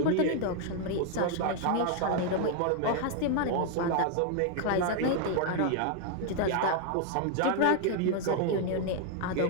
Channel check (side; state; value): both; different; correlation 0.00